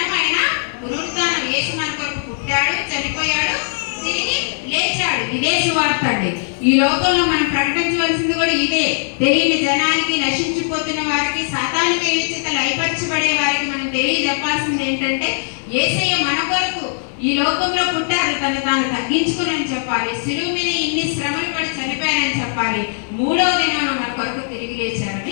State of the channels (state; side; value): silent; right; 56 dB below the other